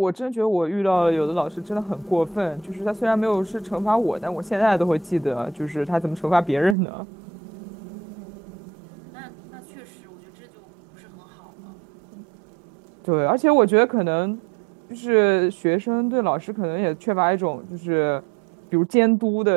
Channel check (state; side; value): drops out; left; at 6.8 s